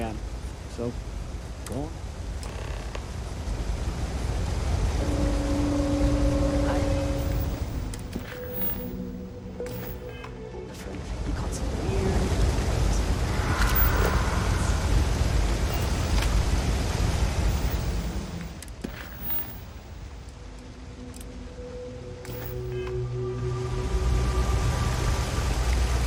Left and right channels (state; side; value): identical; both; correlation 1.00